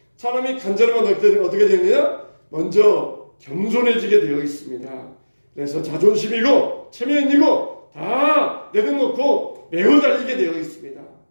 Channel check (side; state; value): both; inverted; correlation -1.00